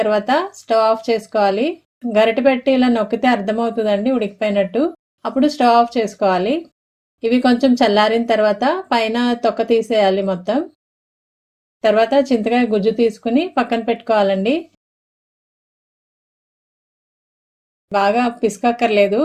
స్టవ్ ఆఫ్ చేసుకోవాలి. గరిటె పెట్టి ఇలా నొక్కితే అర్థమవుతుందండి ఉడికిపోయినట్టు. అప్పుడు స్టవ్ ఆఫ్ చేసుకోవాలి. ఇవి కొంచెం చల్లారిన తర్వాత పైన తొక్క తీసేయాలి మొత్తం. తర్వాత చింతకాయ గుజ్జు తీసుకుని పక్కన పెట్టుకోవాలండి. బాగా పిసకక్కర్లేదు,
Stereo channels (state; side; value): identical; both; correlation 1.00